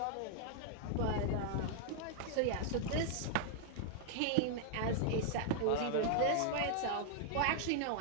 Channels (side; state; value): both; different; correlation 0.00